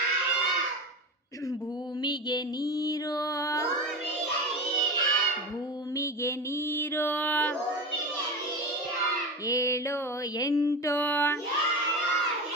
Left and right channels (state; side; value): normal; both; correlation 0.25